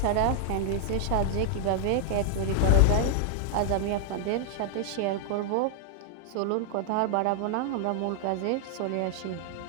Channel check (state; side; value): different; both; correlation -0.01